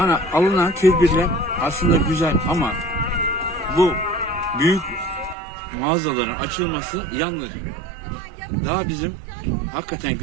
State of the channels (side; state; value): left; drops out; at 5.4 s